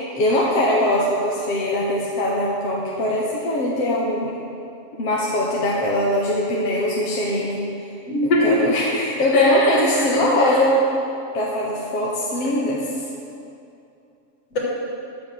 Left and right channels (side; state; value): right; late; 7.2 ms